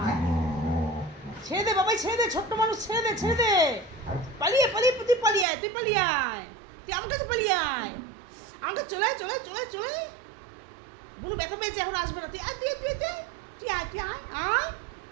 ছেড়ে দে বাবাই, ছোট্ট মানুষ, ছেড়ে দে। পালিয়ে আয়, তুই আমার কাছে পালিয়ে আয়। আমার কাছে চলে বুনু ব্যথা পেয়েছে, এখন আসবে না। তুই আয়,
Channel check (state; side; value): drops out; left; at 5.5 s